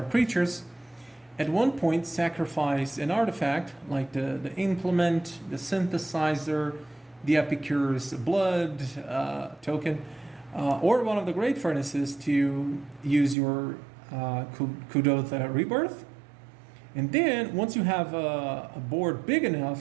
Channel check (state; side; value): drops out; left; at 13.4 s